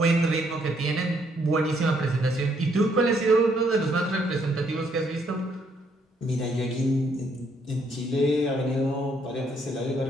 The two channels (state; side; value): normal; both; correlation 0.70